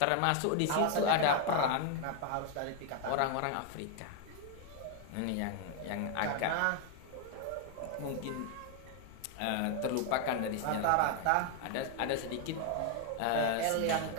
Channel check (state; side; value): different; both; correlation 0.01